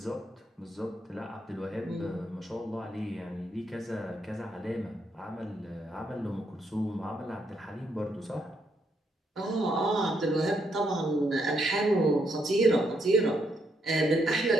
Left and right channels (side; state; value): both; normal; correlation 0.76